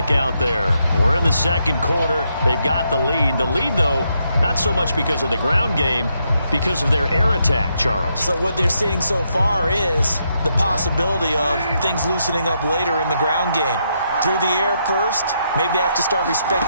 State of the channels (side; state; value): both; inverted; correlation -0.79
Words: out there. We're in the second quarter. They've got the lead. The lead, though, not so much because of the ground game, because of their air attack, Charles. So what they're seeing so far is the possibility of things loosening up later in the ground game. Through the air first, maybe they have to start